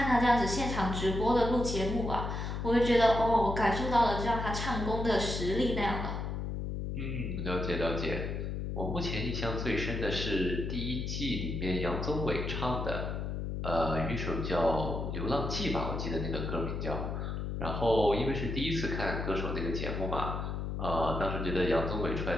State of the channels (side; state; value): left; noise; hum, 3 dB below the sound